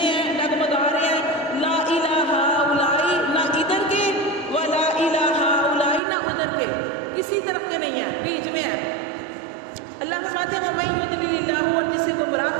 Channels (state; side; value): drops out; left; at 6.0 s